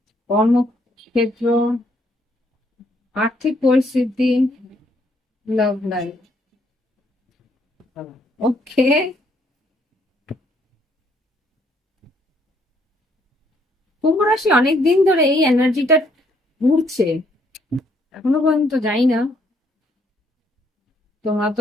কর্মক্ষেত্র, আর্থিক পরিস্থিতি, লাভ লাইফ। ওকে। কুম্ভ রাশি অনেকদিন ধরে এই এনার্জিটা ঘুরছে, এখনো পর্যন্ত যাই না। তোমরা তো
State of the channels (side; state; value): both; normal; correlation 0.69